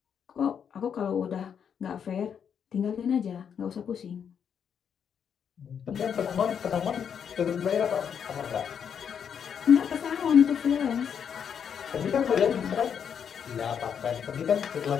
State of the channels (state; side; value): quieter; right; 7.7 dB